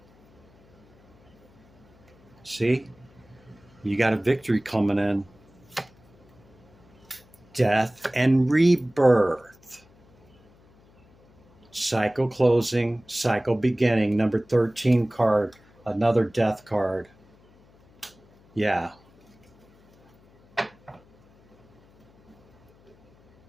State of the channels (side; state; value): left; noise; hum, 29 dB below the sound